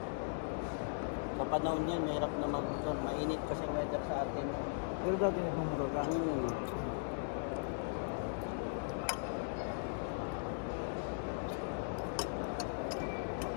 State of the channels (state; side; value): silent; right; digital silence